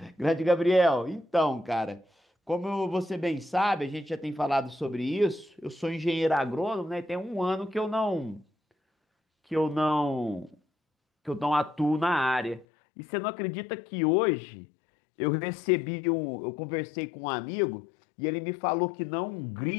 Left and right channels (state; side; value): drops out; right; at 12.7 s